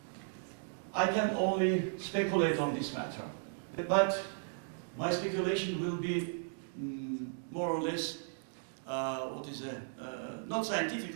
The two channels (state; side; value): silent; left; digital silence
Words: I can only speculate on this matter, but my speculation will be more or less, not scientific,